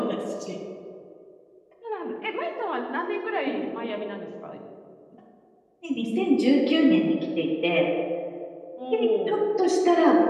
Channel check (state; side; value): identical; both; correlation 1.00